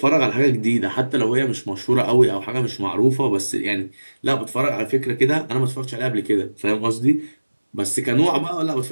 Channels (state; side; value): inverted; both; correlation -1.00